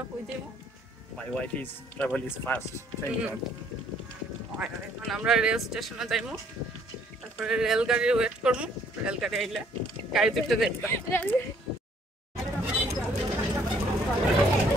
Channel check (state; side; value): normal; both; correlation 0.63